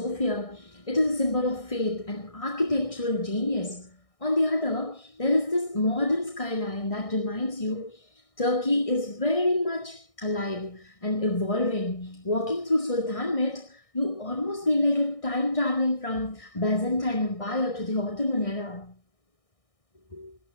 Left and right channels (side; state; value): right; late; 1.6 ms